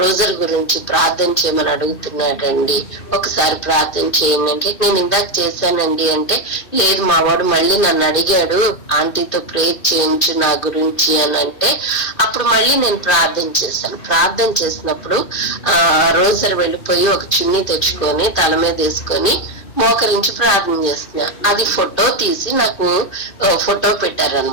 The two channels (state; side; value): late; right; 2.5 ms